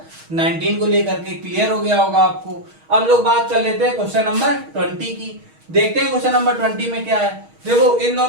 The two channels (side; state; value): left; late; 6.4 ms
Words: 19 को लेकर के। क्लियर हो गया होगा आपको। अब लोग बात कर लेते हैं क्वेश्चन नंबर 20 की। देखते हैं क्वेश्चन नंबर 20 में क्या है। देखो इन